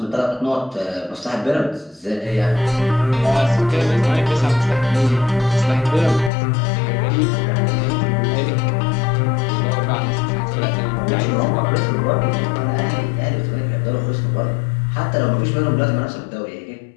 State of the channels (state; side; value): drops out; right; at 6.3 s